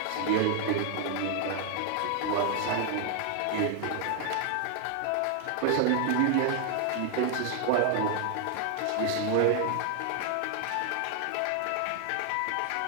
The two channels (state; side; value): different; both; correlation 0.00